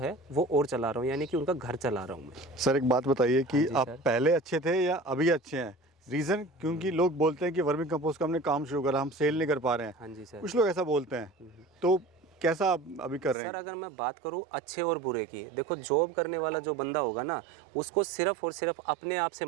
वो और चला रहा हूँ, यानी कि उनका घर चला रहा हूँ मैं। सर एक बात बताइए कि हाँ आप पहले अच्छे थे या अभी अच्छे हैं? रीज़न क्योंकि लोग बोलते हैं कि वर्मी कंपोस्ट का हमने काम शुरू करा, हम सेल नहीं कर पा रहे हैं। हाँ जी सर। कुछ लोग ऐसा बोलते हैं, तो कैसा आप अभी कर रहे हैं? सर अगर मैं बात करूं अच्छे और बुरे की, देखो जॉब करने वाला जो बंदा होगा ना, उसको सिर्फ और सिर्फ अपने आप से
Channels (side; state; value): left; drops out; at 13.4 s